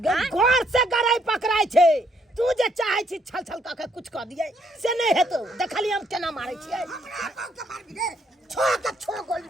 घर से गराई पकड़ाई छे, तू जे चाहे छी छल छल का कुछ कह दिए से नहीं हेतो। देखली हम केना मारे छियै। हमरा बाऊ के मार दे, छो गोली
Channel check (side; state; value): both; normal; correlation 0.70